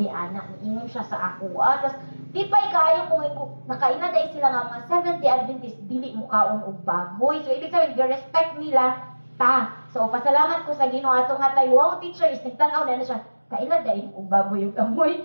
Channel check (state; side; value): inverted; both; correlation -1.00